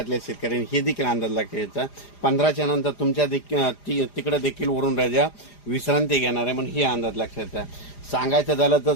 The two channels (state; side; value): late; right; 4.9 ms